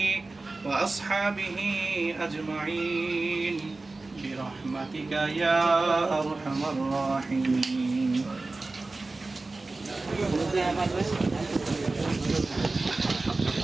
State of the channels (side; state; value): left; quieter; 3.4 dB